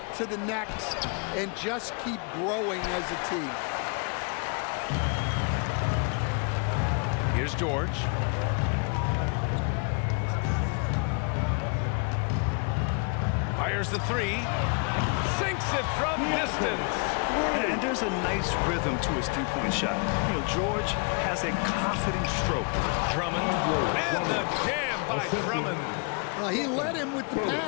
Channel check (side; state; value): right; quieter; 36.1 dB